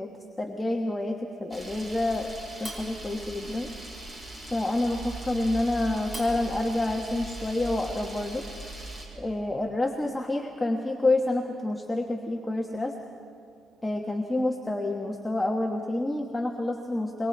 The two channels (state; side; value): normal; both; correlation 0.94